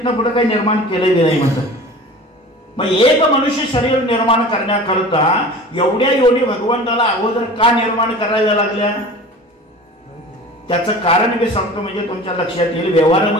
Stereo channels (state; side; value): normal; both; correlation 0.39